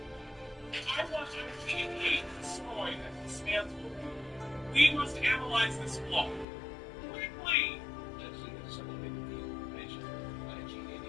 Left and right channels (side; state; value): right; drops out; at 6.5 s